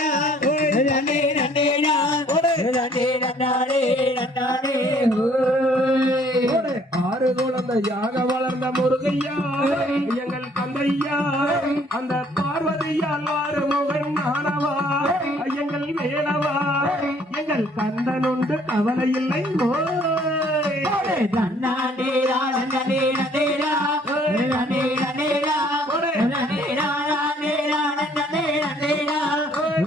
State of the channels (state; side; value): normal; both; correlation 0.60